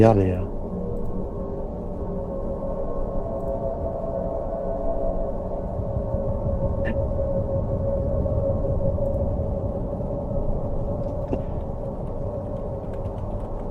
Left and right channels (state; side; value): identical; both; correlation 1.00